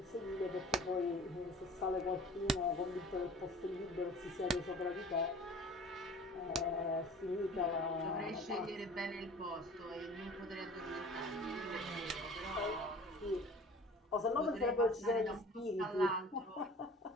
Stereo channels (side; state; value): both; normal; correlation 0.44